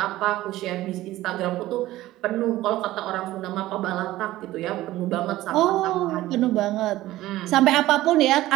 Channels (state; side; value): quieter; left; 16.0 dB